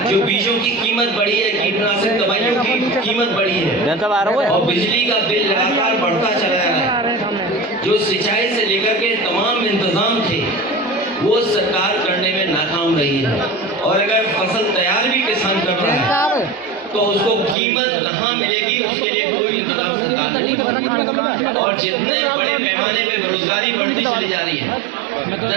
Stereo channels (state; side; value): drops out; left; at 17.6 s